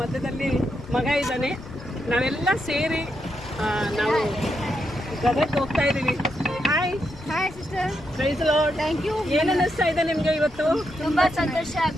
ಮಧ್ಯದಲ್ಲಿ ಮಗ ಇದ್ದಾನೆ, ನಾವೆಲ್ಲ ಸೇರಿ ನಾವು ಗದಗ್ಗೆ ಹೋಗ್ತಾ ಇದ್ದೀವಿ. Hi sister, praise the lord. Thank you. ಏನು ಅನಿಸ್ತಾ ಇದೆ ನಿಮಗೆ ಇವತ್ತು? ತುಂಬಾ ಸಂತೋಷ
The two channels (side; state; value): left; noise; rumble, 20 dB below the sound